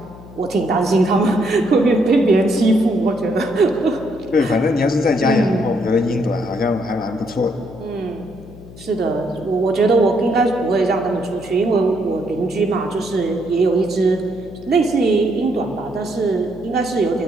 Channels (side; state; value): left; noise; hum, 18 dB below the sound